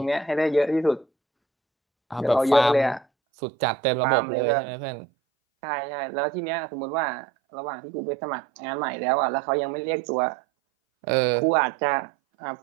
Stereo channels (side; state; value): left; drops out; at 3.1 s